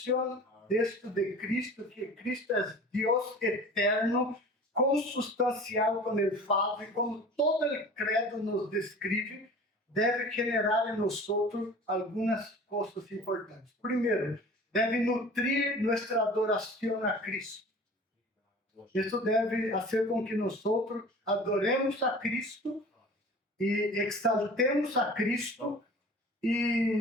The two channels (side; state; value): both; normal; correlation 0.42